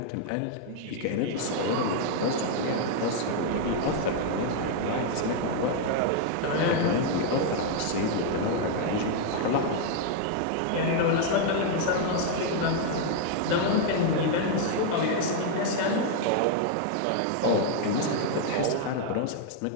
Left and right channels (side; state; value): both; different; correlation 0.00